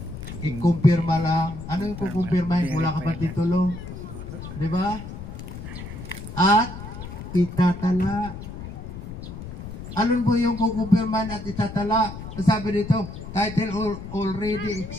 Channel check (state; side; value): noise; left; rumble, 10 dB below the sound